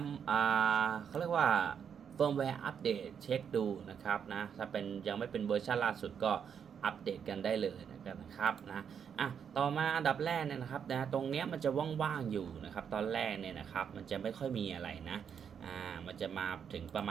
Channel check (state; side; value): quieter; left; 7.6 dB